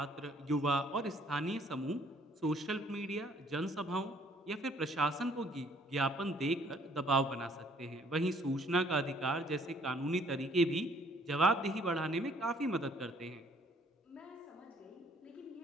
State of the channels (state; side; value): normal; both; correlation 0.61